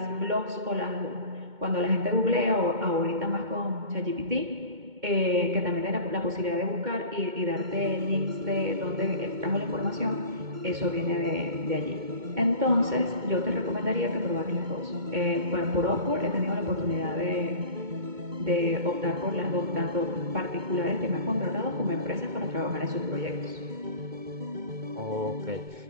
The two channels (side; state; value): left; late; 2.2 ms